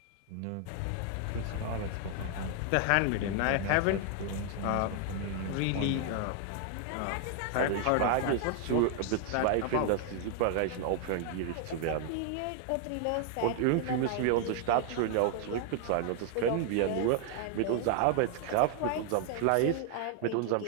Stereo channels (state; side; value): different; both; correlation 0.00